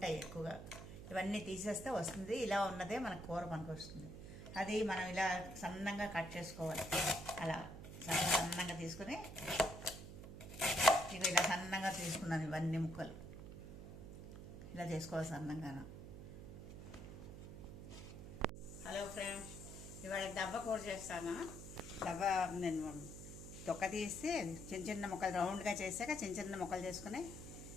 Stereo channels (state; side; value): noise; right; hum, 11 dB below the sound